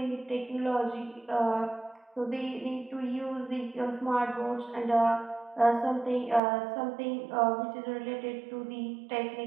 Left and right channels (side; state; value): left; drops out; at 6.4 s